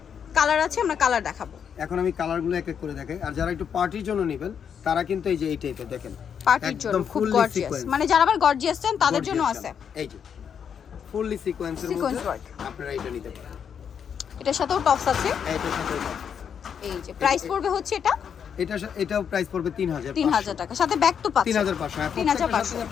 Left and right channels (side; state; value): right; quieter; 7.6 dB